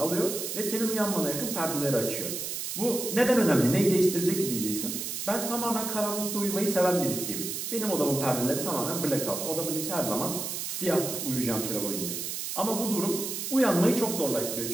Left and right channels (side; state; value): right; noise; hiss, 4 dB below the sound